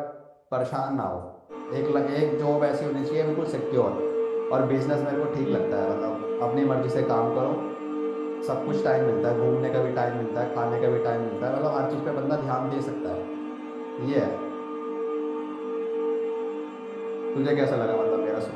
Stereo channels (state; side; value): identical; both; correlation 1.00